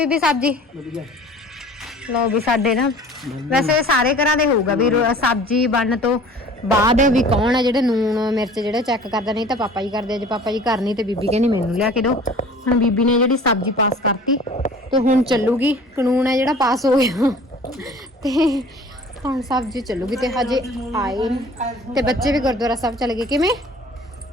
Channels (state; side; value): normal; both; correlation 0.46